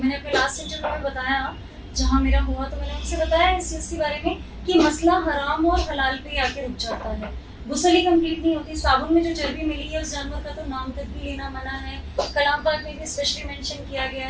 मैंने अपने लास्ट इंटरव्यू में बताया, जहाँ मेरा हुआ, तो मैंने उनसे बताया इस चीज़ के बारे में कि मसला हराम और हलाल पे आके रुक जाता है। गुस्ल ही कंप्लीट नहीं होती। साबुन में जो चर्बी मिली है उस जानवर का तो नाम तक भी लेना मना है। कलाम पाक में भी स्पेशली मेंशन किया गया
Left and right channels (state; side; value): identical; both; correlation 1.00